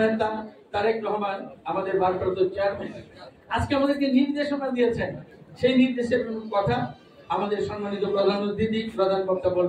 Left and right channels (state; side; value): identical; both; correlation 1.00